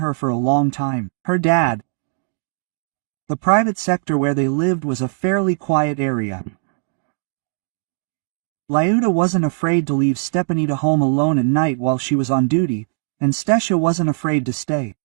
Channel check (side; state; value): left; silent; digital silence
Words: for a long time. Her dad. The private sector where they lived was a fairly quiet area. Lyuda wasn't afraid to leave Stepanida home alone at night while she was on duty, and Stasha wasn't afraid to stay.